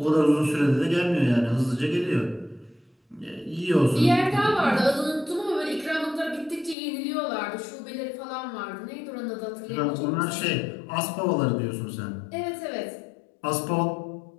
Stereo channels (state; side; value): drops out; right; at 6.8 s